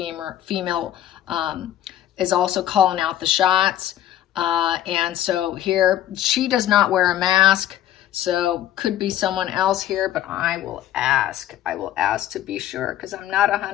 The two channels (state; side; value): quieter; right; 12.1 dB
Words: is also calling out the shots. And so here, she does not wear a mask. So could be someone else here, but I will ask. I will ask to be sure, because I'm not